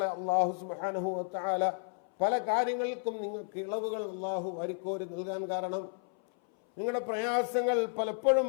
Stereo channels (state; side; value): silent; right; 56 dB below the other